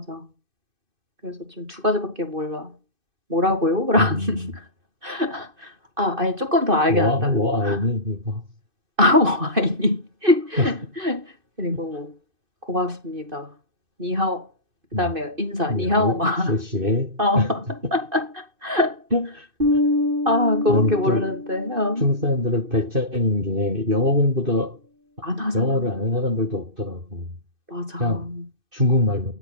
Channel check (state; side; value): late; left; 2.5 ms